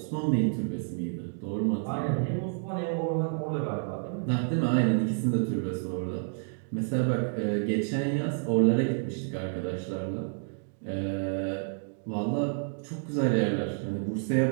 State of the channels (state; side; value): silent; left; digital silence